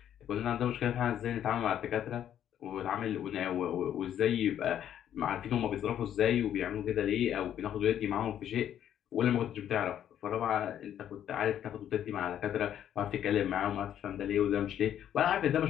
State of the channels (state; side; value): quieter; right; 10.3 dB